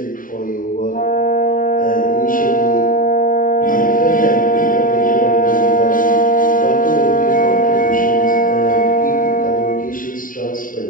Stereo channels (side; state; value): right; late; 0.39 ms